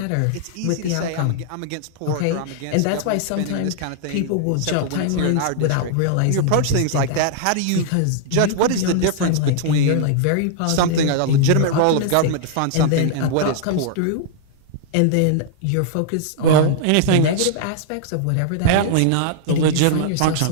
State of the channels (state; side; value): different; both; correlation -0.01